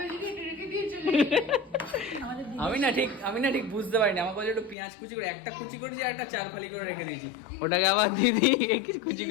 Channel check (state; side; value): drops out; right; at 4.8 s